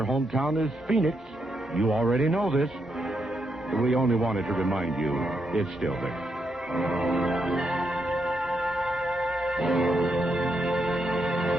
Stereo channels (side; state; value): both; normal; correlation 0.81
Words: hometown is Phoenix, you already know this. We only wanted to remind you it's still there.